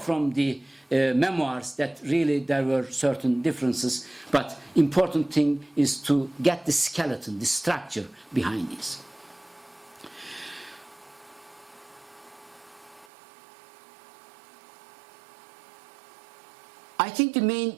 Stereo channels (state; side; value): drops out; left; at 13.1 s